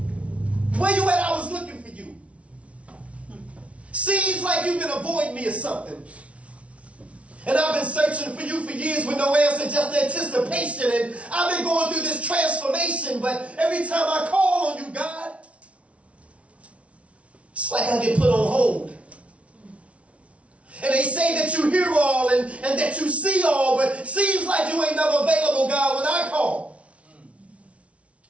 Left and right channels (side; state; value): left; late; 0.063 ms